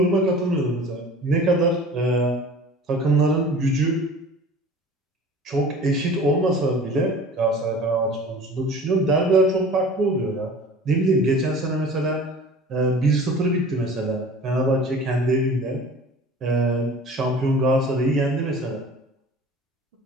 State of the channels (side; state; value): both; normal; correlation 0.43